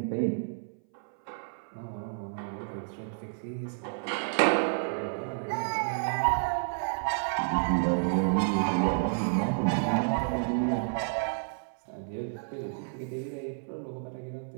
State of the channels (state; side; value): silent; left; 57 dB below the other